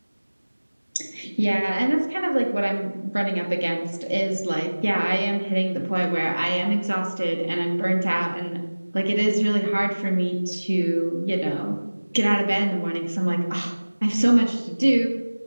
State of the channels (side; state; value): both; inverted; correlation -1.00